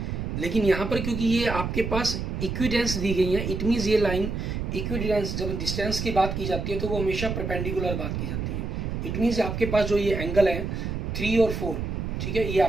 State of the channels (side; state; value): right; noise; rumble, 3 dB below the sound